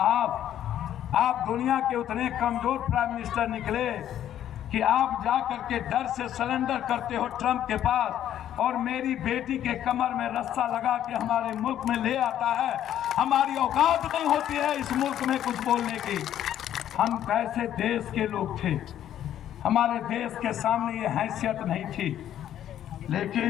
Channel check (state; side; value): quieter; right; 11.1 dB